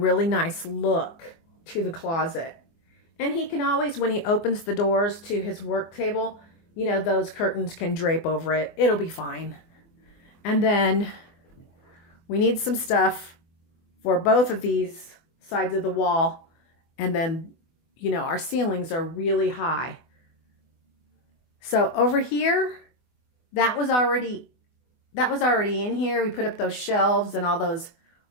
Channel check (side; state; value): right; late; 24 ms